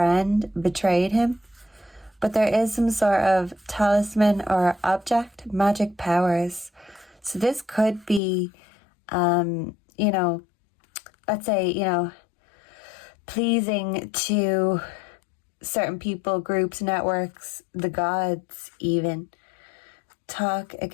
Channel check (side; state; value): right; drops out; at 8.2 s